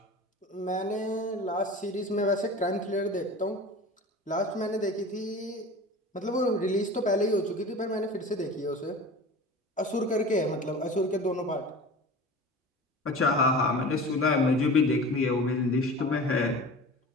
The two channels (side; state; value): both; normal; correlation 0.37